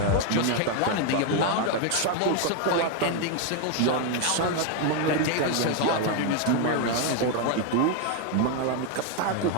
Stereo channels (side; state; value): both; different; correlation 0.01